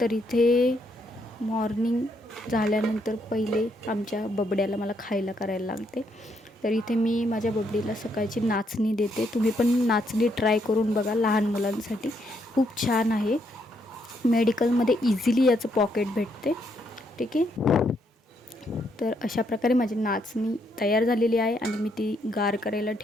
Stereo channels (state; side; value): normal; both; correlation 0.75